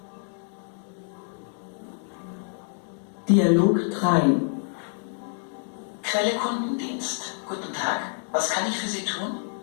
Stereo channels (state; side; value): silent; right; 60 dB below the other